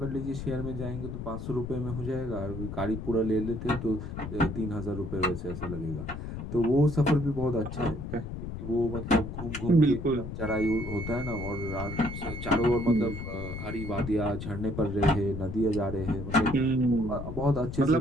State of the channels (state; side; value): noise; left; rumble, 7 dB below the sound